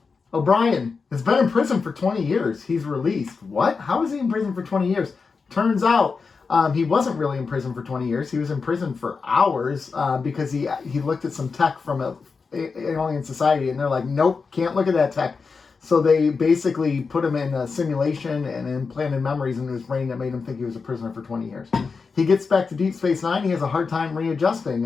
O'Brien has been in prison for 20 years. He's released. What? How is he in prison for 20 years? Turns out he wasn't really in prison for 20 years. He was in prison for hours because he looked at some tech from an alien society, and they're like, nope, can't look at that tech. So they basically put him in a simulation and implanted memories into his brain that made him think he was a prisoner for 20 years. He gets back to Deep Space Nine. He has a hard time readjusting.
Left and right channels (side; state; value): right; quieter; 4.9 dB